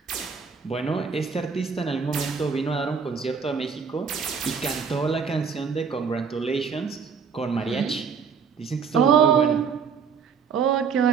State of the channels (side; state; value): left; quieter; 6.1 dB